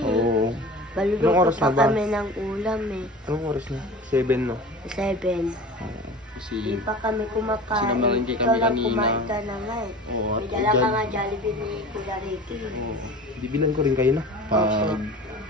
Oo. Anong Baluluto oras pa na ba? kami ng ulam eh. Anong oras na? 7 no? 7. Oo. Kasi, Di pa kami kumakain. Sinamalengke kami Ikaw lang kanina. kumain ka na nga eh. oo. May dala ka nga Jollibee ni Kuya Ricky. Oo. Bibilan ko rin kayo na. Opo.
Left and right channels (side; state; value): both; normal; correlation 0.38